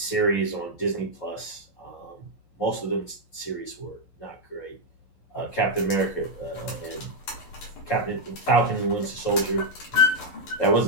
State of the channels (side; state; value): right; late; 11 ms